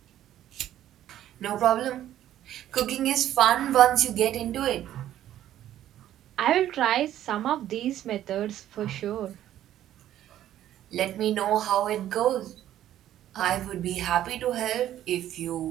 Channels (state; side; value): quieter; left; 12.2 dB